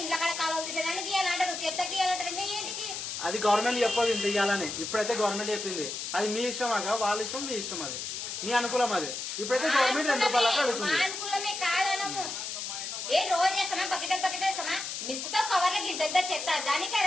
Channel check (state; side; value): noise; left; hiss, 5 dB below the sound